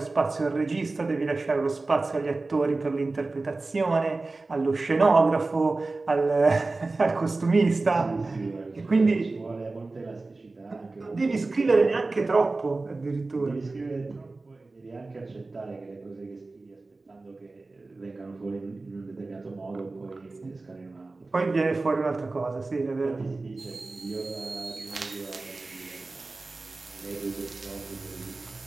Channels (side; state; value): left; quieter; 3.4 dB